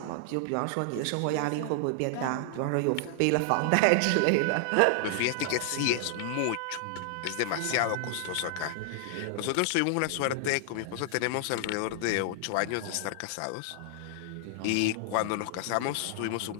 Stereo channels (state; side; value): different; both; correlation 0.00